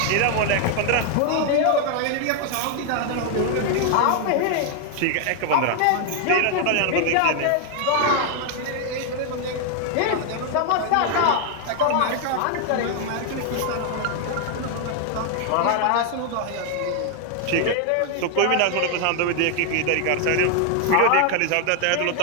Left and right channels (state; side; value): different; both; correlation 0.00